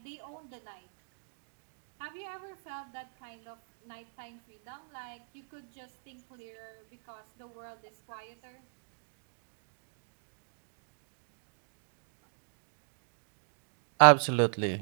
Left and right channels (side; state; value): left; silent; digital silence